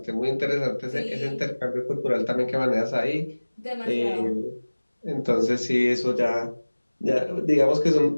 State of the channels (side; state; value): both; inverted; correlation -1.00